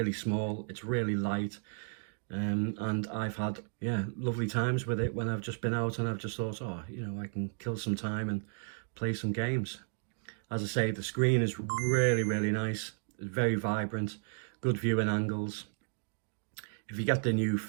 small, it's really light, and I've had, yeah, lovely times with it when I've just been out and I've just thought, oh, you know, I can kill some time and play some games. As I say, the screen is really nice. It's very vibrant, good viewing angles. If you get the new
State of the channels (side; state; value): left; silent; 55 dB below the other